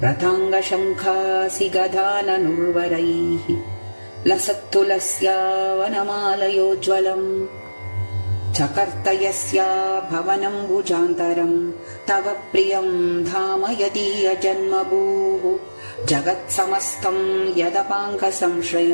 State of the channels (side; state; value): both; inverted; correlation -1.00